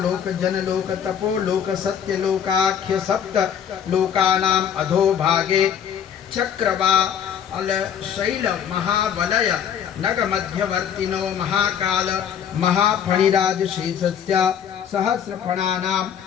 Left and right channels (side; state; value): right; quieter; 8.6 dB